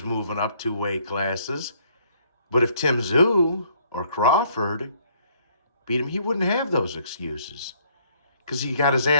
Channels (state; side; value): inverted; both; correlation -0.64